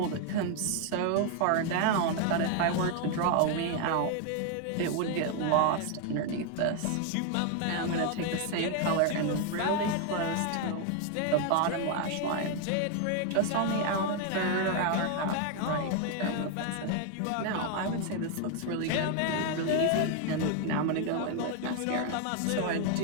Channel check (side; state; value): both; different; correlation 0.01